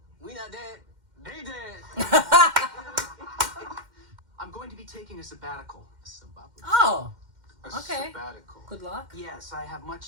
we not dead. They dead. I'm going to be taking a sabbatical. Oh, A okay. sabbatical. Good luck. Yes, I have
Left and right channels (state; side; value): late; left; 2.1 ms